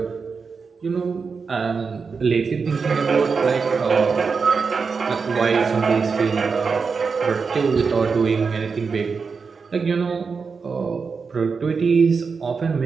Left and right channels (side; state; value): left; quieter; 5.2 dB